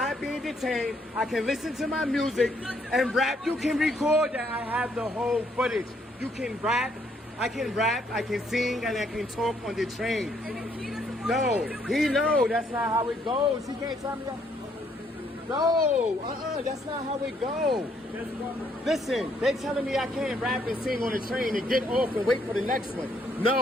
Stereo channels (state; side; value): normal; both; correlation 0.70